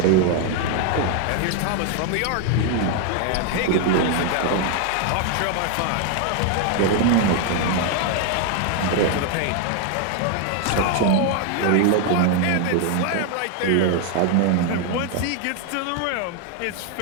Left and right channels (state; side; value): different; both; correlation 0.01